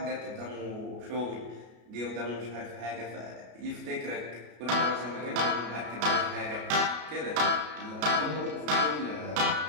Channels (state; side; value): late; left; 33 ms